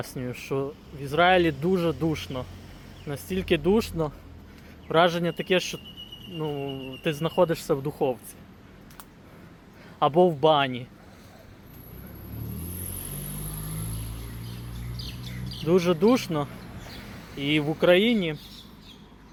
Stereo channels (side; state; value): both; identical; correlation 1.00